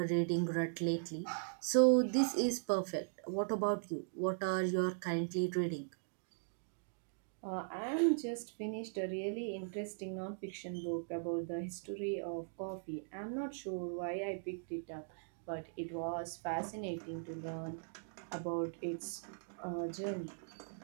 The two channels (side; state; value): left; silent; digital silence